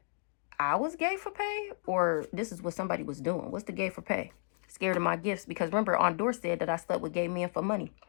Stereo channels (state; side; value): silent; right; digital silence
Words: I was gay for pay, or this is what somebody was doing. What's the gay for pay? Scared of my gifts, because remember, Ondor said that I slept with gay men for money.